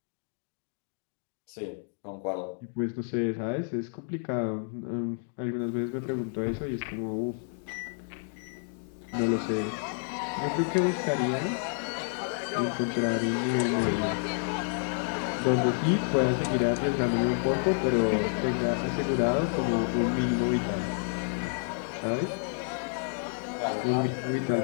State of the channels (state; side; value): silent; right; 58 dB below the other